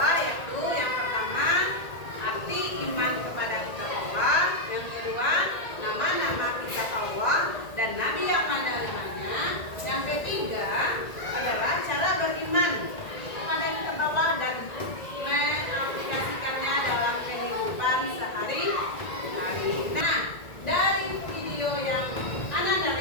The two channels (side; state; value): right; late; 1.9 ms